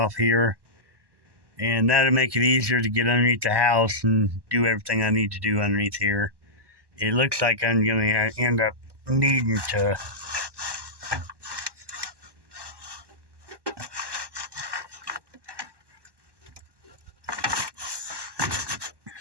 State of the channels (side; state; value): left; late; 1.1 ms